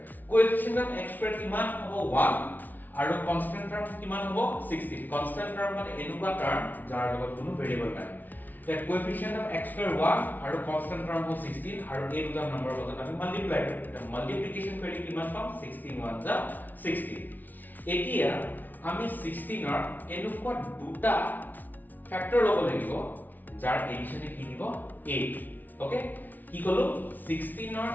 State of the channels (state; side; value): late; right; 0.083 ms